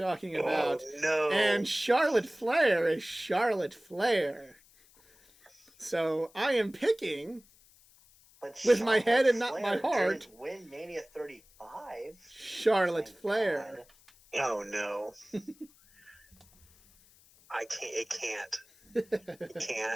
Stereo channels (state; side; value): noise; left; hiss, 28 dB below the sound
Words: about. Oh, no. And Charlotte Flair is Charlotte Flair. So I am picking, But with my head and not my Flair heart, didn't win Mania 35. Charlotte Thank Flair. God. Oh, no. I can't. It can't. It